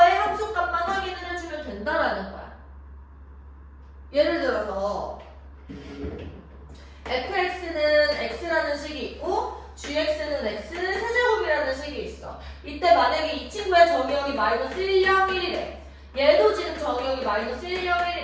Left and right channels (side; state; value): both; identical; correlation 1.00